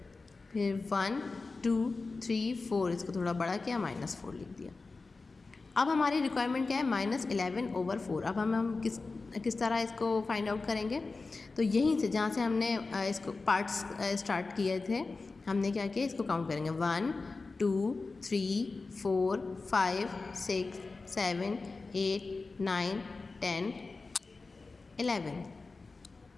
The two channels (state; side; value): quieter; right; 3.8 dB